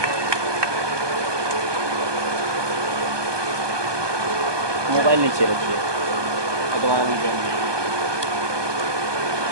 मोबाइल नीचे रखिए।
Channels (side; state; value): left; late; 1.2 ms